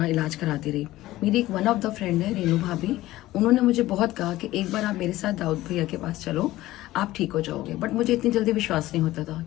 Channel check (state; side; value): quieter; right; 16.4 dB